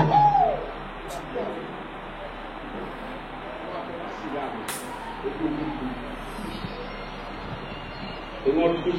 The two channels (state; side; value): noise; left; rumble, 27 dB below the sound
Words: Èmi wọn tún